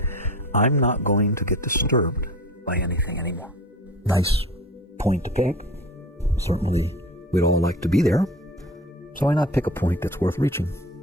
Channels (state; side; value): normal; both; correlation 0.38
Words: I'm not going to get disturbed by anything anymore. Nice point to pick. Certainly we'd all like to be there. So why not pick a point that's worth reaching?